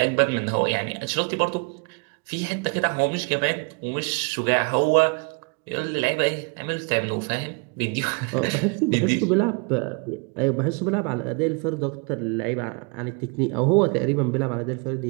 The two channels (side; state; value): left; quieter; 33.7 dB